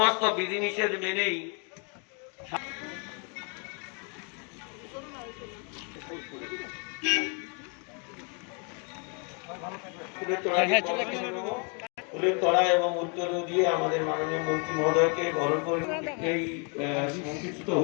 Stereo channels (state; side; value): quieter; right; 36.4 dB